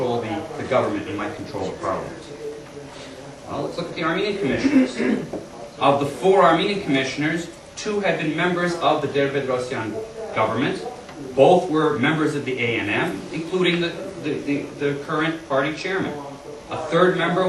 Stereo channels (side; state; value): both; identical; correlation 1.00